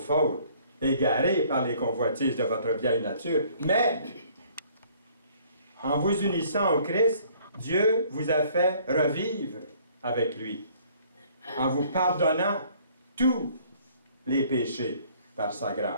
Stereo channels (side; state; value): both; inverted; correlation -0.58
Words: égarés par les convoitises de votre vieille nature. Mais, en vous unissant au Christ, Dieu vous a fait revivre avec lui, en vous pardonnant tous les péchés par sa